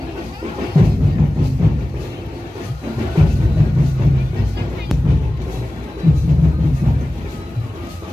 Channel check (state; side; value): normal; both; correlation 0.96